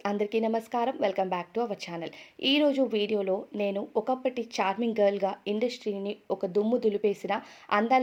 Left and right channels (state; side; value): identical; both; correlation 1.00